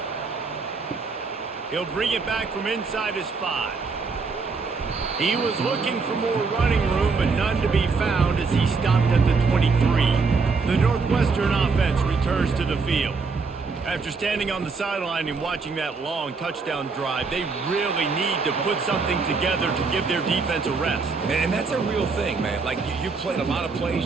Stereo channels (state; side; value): quieter; left; 4.5 dB